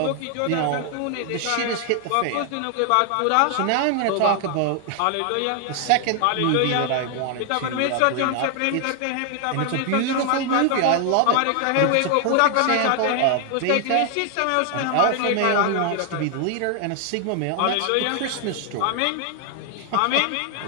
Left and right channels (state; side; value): different; both; correlation 0.00